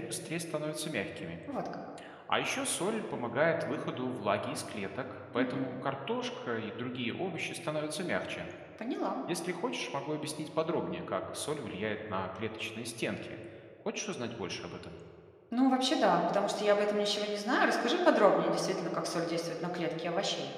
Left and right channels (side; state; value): both; identical; correlation 1.00